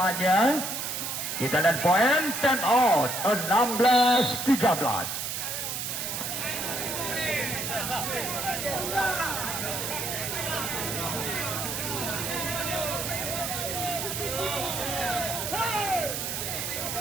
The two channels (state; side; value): noise; right; hiss, 3 dB below the sound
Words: Kita lihat poin 10 out. 16-13.